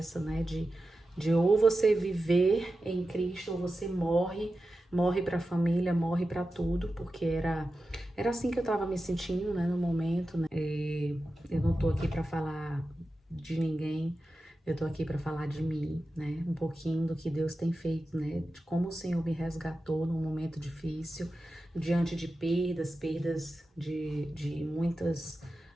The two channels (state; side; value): normal; both; correlation 0.92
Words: né? De ou você viver em Cristo ou você morre para a família, morre para tudo, porque era assim que eu estava me sentindo, né, no momento, né? Eu não tô aqui para falar de ninguém, eu tô aqui para falar de mim, né? Um pouquinho do que Deus tem feito, né? De como o Senhor me resgatou num momento difícil, diante de perdas de muitas